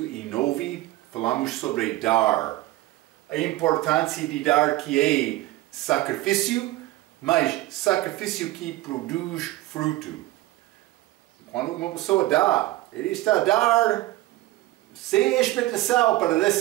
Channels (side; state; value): left; quieter; 17.5 dB